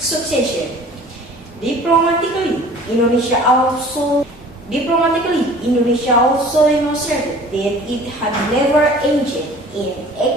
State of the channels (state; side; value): normal; both; correlation 0.47